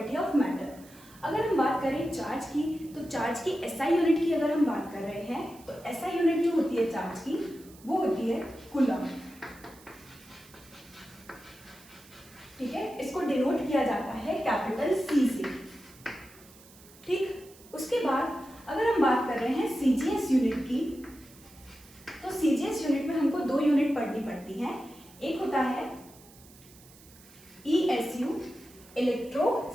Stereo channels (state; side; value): noise; right; hiss, 23 dB below the sound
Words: of matter. अगर हम बात करें चार्ज की, तो चार्ज की एसआई यूनिट की अगर हम बात कर रहे हैं तो एसआई यूनिट जो होती है चार्ज की वो होती है कूलम। ठीक है, इसको डिनोट किया जाता है कैपिटल सी से। ठीक, उसके बाद अगर हम बात कर रहे हैं सीजीएस यूनिट की, तो सीजीएस यूनिट में हमको दो यूनिट पढ़नी पड़ती हैं। एक होता है ESU,